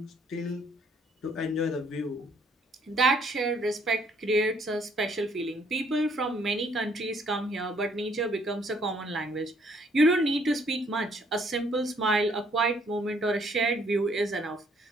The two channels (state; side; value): normal; both; correlation 0.65